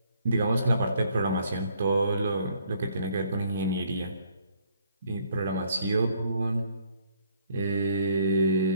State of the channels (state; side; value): inverted; both; correlation -0.65